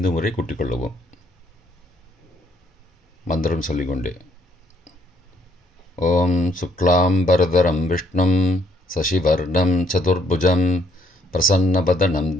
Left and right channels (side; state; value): both; normal; correlation 0.68